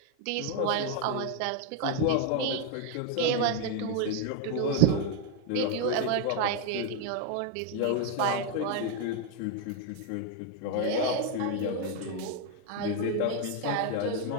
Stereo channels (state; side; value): different; both; correlation 0.01